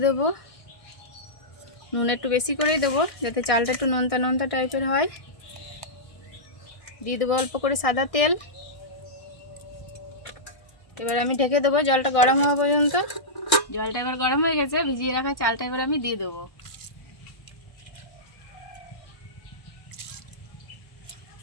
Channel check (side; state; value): right; late; 1.6 ms